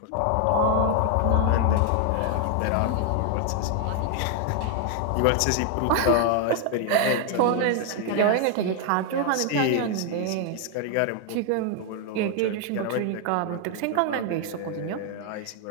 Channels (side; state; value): both; different; correlation 0.00